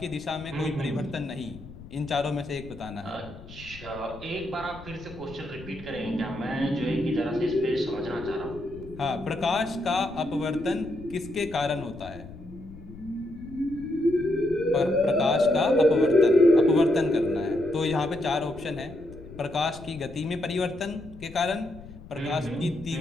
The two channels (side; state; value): left; noise; rumble, 16 dB below the sound